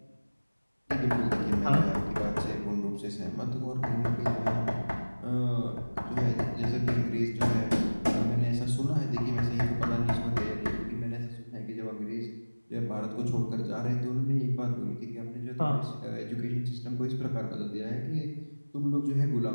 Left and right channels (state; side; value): inverted; both; correlation -1.00